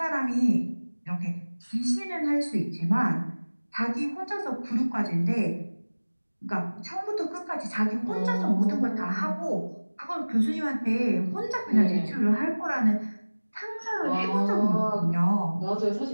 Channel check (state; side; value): inverted; both; correlation -1.00